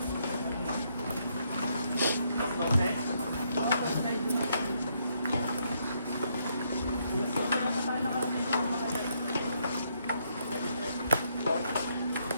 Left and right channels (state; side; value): inverted; both; correlation -0.74